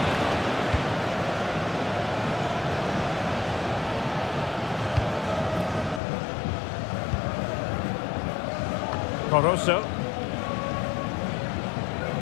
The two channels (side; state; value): right; drops out; at 6.0 s